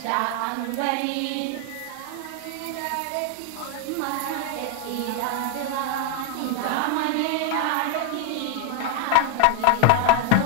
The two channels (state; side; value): different; both; correlation 0.00